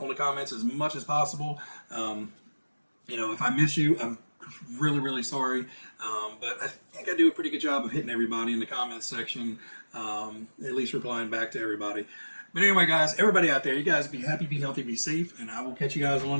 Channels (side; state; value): both; inverted; correlation -1.00